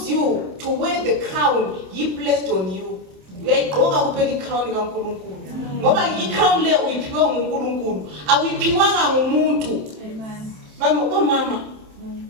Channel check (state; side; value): late; left; 27 ms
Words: you to wear the crown He placed on you. Uyayigqoka kuphela i-crown kaNkulunkulu. Ngoba i-crown le uyiphiwe nguNkulunkulu, awuyiphiwanga ngumuntu. Mama,